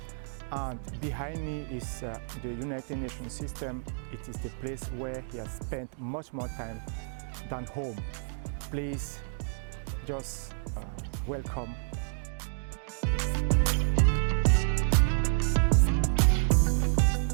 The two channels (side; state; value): left; silent; digital silence